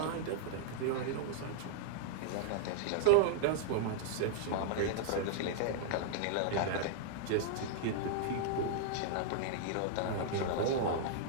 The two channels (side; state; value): both; different; correlation -0.01